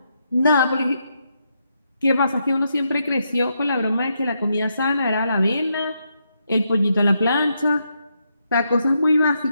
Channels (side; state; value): both; inverted; correlation -0.80